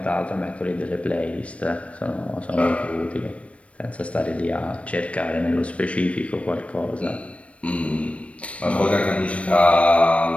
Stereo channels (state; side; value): late; right; 0.063 ms